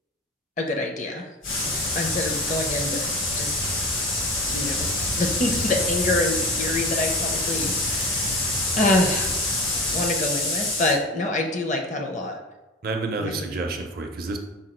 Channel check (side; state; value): both; normal; correlation 0.32